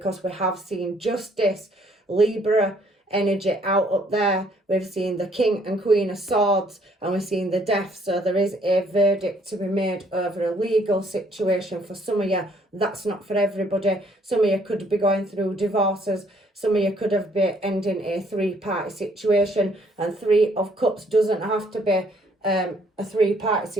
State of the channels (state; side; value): normal; both; correlation 0.64